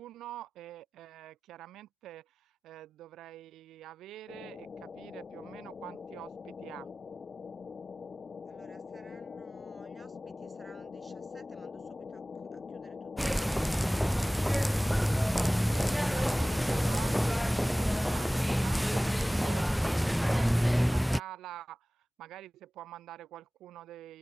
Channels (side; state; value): both; normal; correlation 0.98